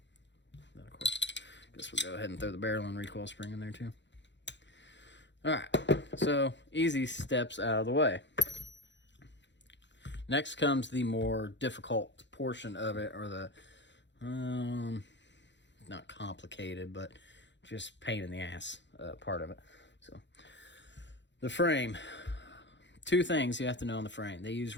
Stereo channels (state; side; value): late; right; 0.52 ms